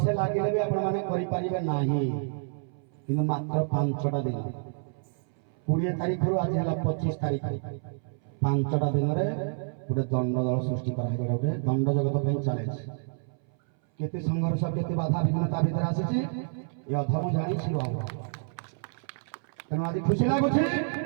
ଲାଗିଲେ ବି ଆପଣମାନେ କରିପାରିବେ ନାହିଁ କିନ୍ତୁ ମାତ୍ର 5ଟା ଦିନ 20 ତାରିଖରୁ ଆଜି ହେଲା 25 ତାରିଖ 5ଟା ଦିନରେ ଗୋଟେ ଦଣ୍ଡ ଦଳ ସୃଷ୍ଟି କରାହେଇଗଲା ଗୋଟେ ଦଣ୍ଡ ଜଗତ ପାଇଁ ଚ୍ୟାଲେଞ୍ଜ କେତେ ସଂଘର୍ଷ କେତେ ବାଧା ବିଘ୍ନତା ଭିତରେ ଆସିଛି ଏ ଅଧର୍ମ ଜାଣି ଛିଡ଼ ହେବ ତେଣୁ ଆଜି ଖୁସି ଲାଗୁଛି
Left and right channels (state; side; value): silent; left; 59 dB below the other